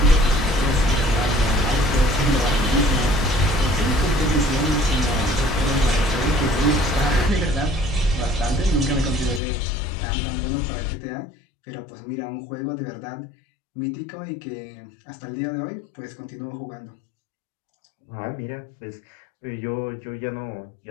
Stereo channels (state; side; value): drops out; right; at 9.4 s